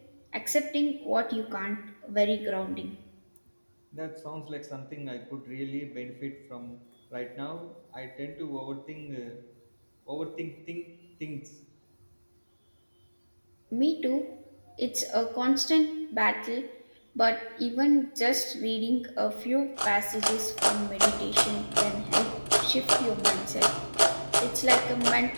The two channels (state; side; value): inverted; both; correlation -1.00